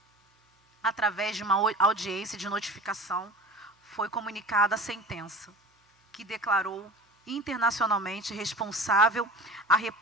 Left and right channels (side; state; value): both; normal; correlation 0.39